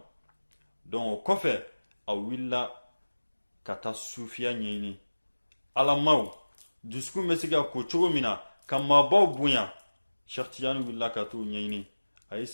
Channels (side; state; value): both; inverted; correlation -1.00